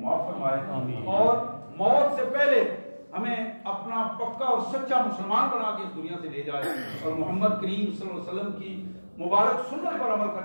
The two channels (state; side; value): inverted; both; correlation -1.00